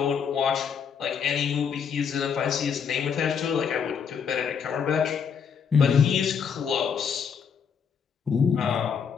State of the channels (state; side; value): quieter; right; 6.8 dB